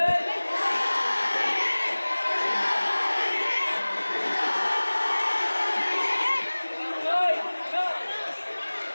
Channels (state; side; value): inverted; both; correlation -1.00